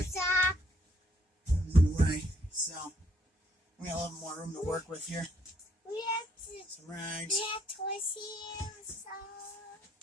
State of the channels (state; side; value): normal; both; correlation 0.68